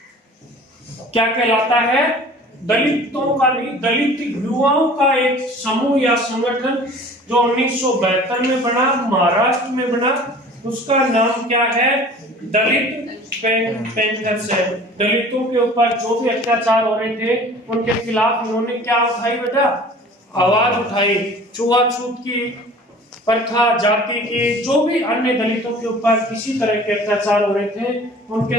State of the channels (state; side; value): normal; both; correlation 0.45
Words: क्या कहलाता है? दलितों का नहीं, दलित युवाओं का एक समूह या संगठन जो 1972 में बना, महाराष्ट्र में बना, उसका नाम क्या है? दलित पैंथर्स है। दलितों के ऊपर जो भी अत्याचार हो रहे थे उनके खिलाफ उन्होंने क्या उठाई बेटा? आवाज उठाई। छुआछूत की प्रथा, जाति की, जो भी अन्य दलितों के ऊपर किसी तरह के अत्याचार हो रहे थे उनके